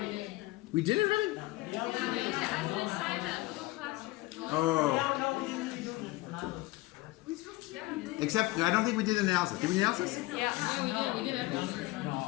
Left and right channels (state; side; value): quieter; right; 20.1 dB